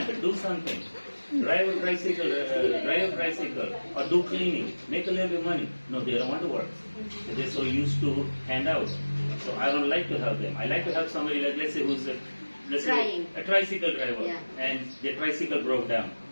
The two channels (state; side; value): inverted; both; correlation -1.00